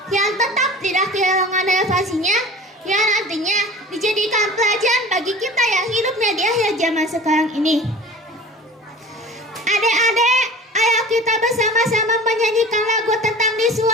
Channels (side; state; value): both; normal; correlation 0.40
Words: yang tetap tidak kehilangan sekarang ini. Adik-adik, ayo kita bersama-sama menyanyikan lagu tentang di